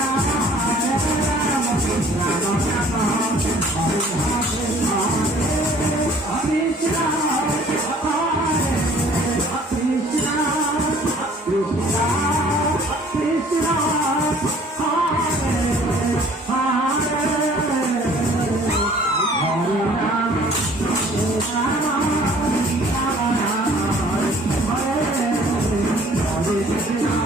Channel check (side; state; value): both; normal; correlation 0.54